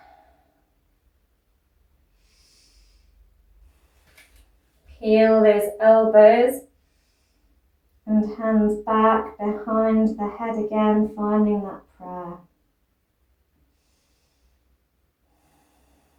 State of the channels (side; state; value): both; identical; correlation 1.00